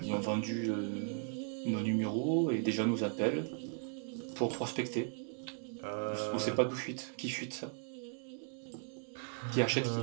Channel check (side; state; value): left; silent; 53 dB below the other